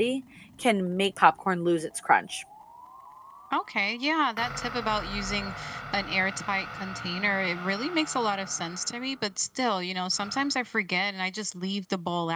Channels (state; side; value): identical; both; correlation 1.00